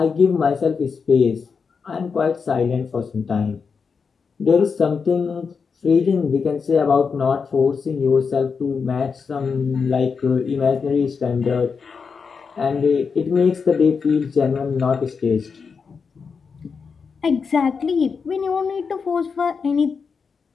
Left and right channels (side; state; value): right; quieter; 5.5 dB